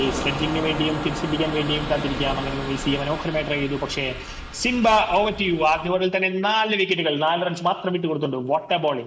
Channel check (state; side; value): identical; both; correlation 1.00